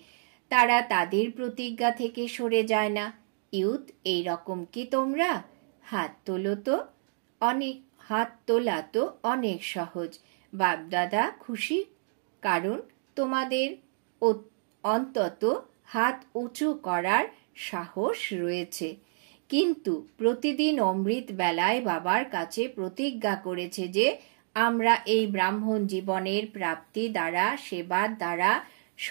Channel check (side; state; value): left; silent; digital silence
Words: তারা তাদের প্রতিজ্ঞা থেকে সরে যায় না। ইউথ এই রকম কি তোমরা? হাত তোলো তো। হাত তোলা তো অনেক সহজ। বাপদাদা খুশি, কারণ তোমাদের অন্তত হাত উঁচু করার সাহস রয়েছে। কিন্তু প্রতিদিন অমৃত বেলায় বাবার কাছে প্রতিজ্ঞা করেছে যে আমরা এই ব্রাহ্মণ জীবনের প্রাপ্তি দ্বারা, সেবার দ্বারা,